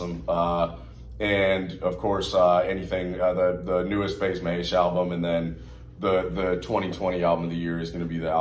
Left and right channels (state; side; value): identical; both; correlation 1.00